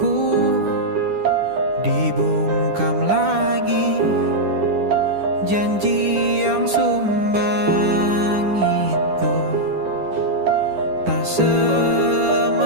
dibungkam lagi janji yang sumbang itu tak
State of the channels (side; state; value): left; late; 10 ms